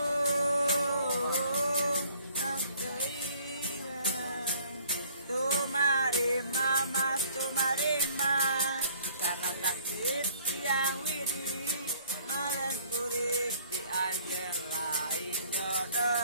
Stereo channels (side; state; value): both; inverted; correlation -0.57